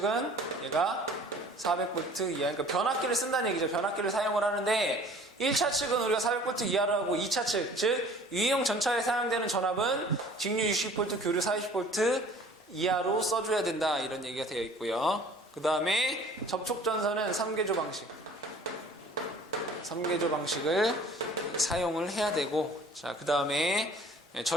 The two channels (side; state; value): both; normal; correlation 0.50